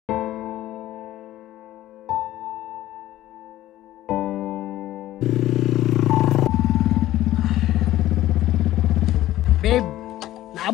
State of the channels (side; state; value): right; quieter; 14.5 dB